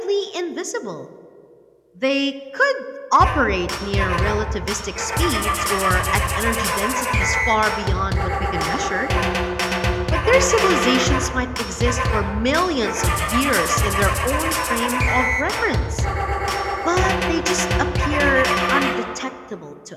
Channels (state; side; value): identical; both; correlation 1.00